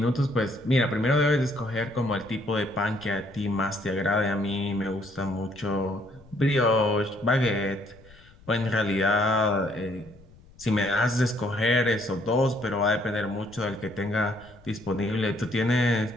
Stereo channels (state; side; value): noise; left; rumble, 24 dB below the sound